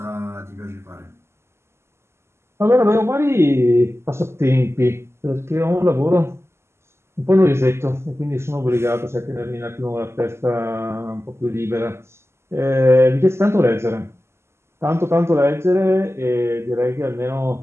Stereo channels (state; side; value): late; left; 0.13 ms